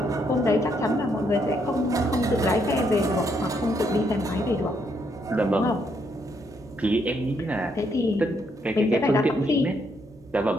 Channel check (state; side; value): normal; both; correlation 0.74